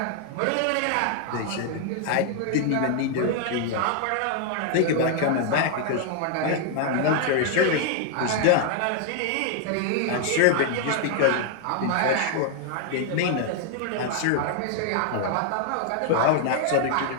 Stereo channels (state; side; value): different; both; correlation 0.00